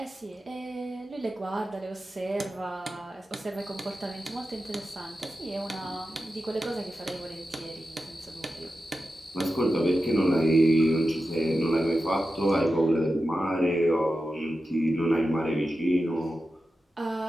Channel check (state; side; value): normal; both; correlation 0.92